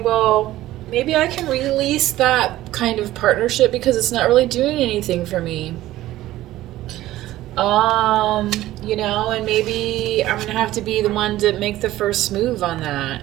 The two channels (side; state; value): left; quieter; 15.3 dB